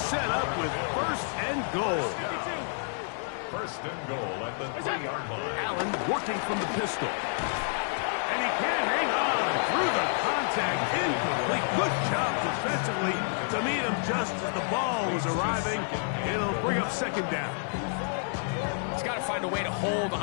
up with first and goal. First and goal at the 3-yard line. Allen working from the pistol. And he can't hang on through the contact. Incomplete. Good job defensively to meet him just as the ball was arriving. It'll bring up second down. He's got to find a way to hold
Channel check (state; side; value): silent; right; digital silence